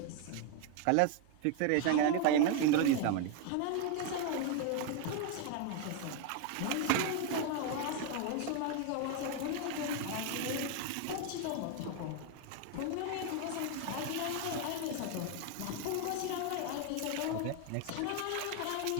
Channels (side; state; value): both; different; correlation 0.01